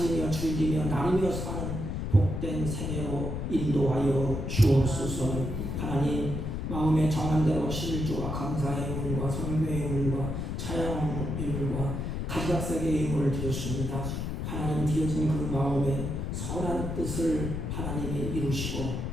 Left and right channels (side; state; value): left; noise; rumble, 3 dB below the sound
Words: 즐기며 나누며 사는 복된 생애로 인도하여 주옵소서. 하나님 마음에 정한 대로 11조와 감사의 의물과 성교의 의물과 찬양의 의물과 가지각색의 의물을 드렸습니다. 하나님 드려진 그 마음에 선한 뜻을 하나님이 이루시고